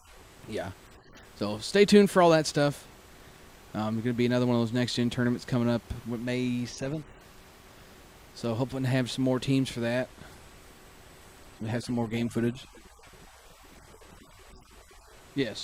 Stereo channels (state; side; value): identical; both; correlation 1.00